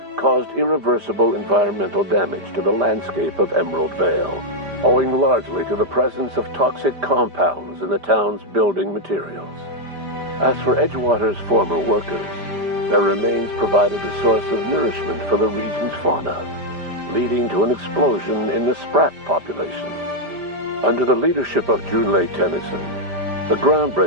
caused irreversible environmental damage to the landscape of Emerald Vale, owing largely to the presence of toxic compounds in the town's building materials. As for Edgewater's former workers, their remains provided a source of nourishment for the region's fauna, leading to an explosion in the sprat population. Under the leadership of Junlei Tennyson, the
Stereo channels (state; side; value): late; left; 5.0 ms